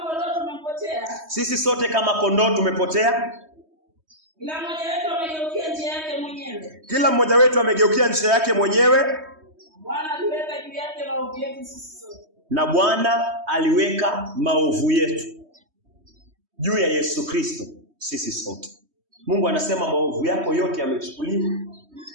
Sisi sote kama kondoo tumepotea. Kila mmoja wetu amegeukia njia yake mwenyewe. Na Bwana aliweka maovu yetu juu ya Yesu Kristo sisi sote. Mungu anasema maovu yako yote yamechukuliwa,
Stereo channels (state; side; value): late; left; 3.2 ms